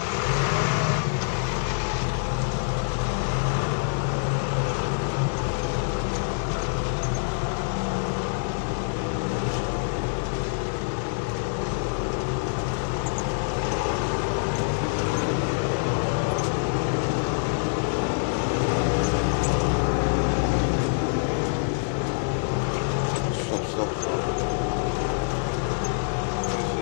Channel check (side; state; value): right; silent; digital silence